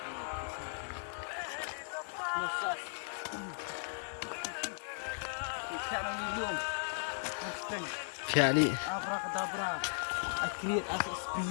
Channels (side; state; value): right; silent; digital silence